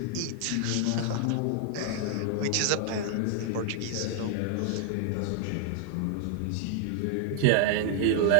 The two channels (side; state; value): both; different; correlation 0.00